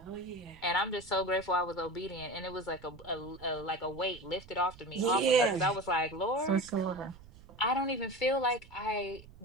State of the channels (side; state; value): right; noise; rumble, 21 dB below the sound